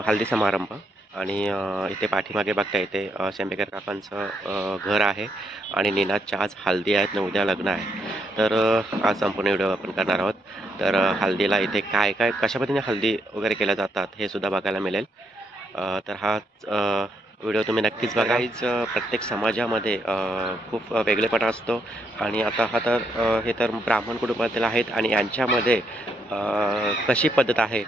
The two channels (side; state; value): both; normal; correlation 0.77